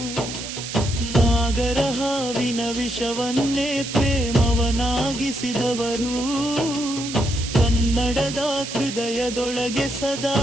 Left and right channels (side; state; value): right; noise; hiss, 8 dB below the sound